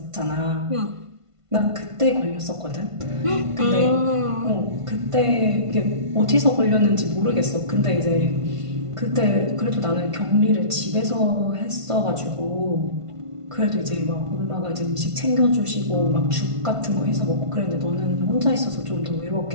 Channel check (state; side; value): late; left; 1.5 ms